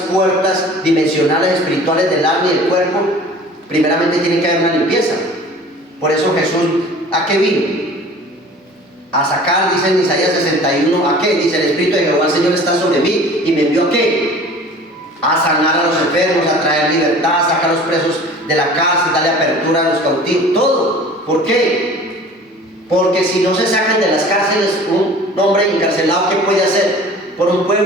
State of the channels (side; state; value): both; normal; correlation 0.44